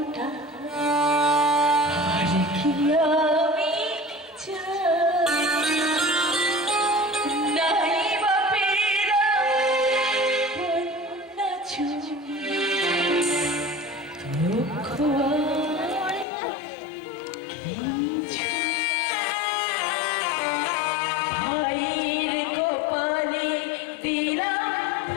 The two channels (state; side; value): drops out; right; at 16.2 s